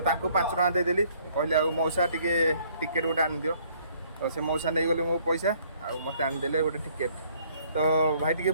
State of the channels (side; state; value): both; inverted; correlation -0.62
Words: टଙ୍କା देदेली कहली आ मौसा टिके टिकेट गोटे आन दियो। तो से मौसा नहीं गले मो पैसा आ मते आन देले गोटे टिकेट। तो भाई टिके